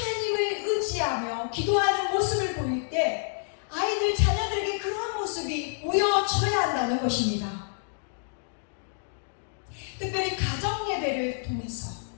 의지하며 기도하는 모습을 보일 때 아이들, 자녀들에게 그러한 모습이 보여져야 한다는 것입니다. 특별히 가정 예배를 통해서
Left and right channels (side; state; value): right; silent; digital silence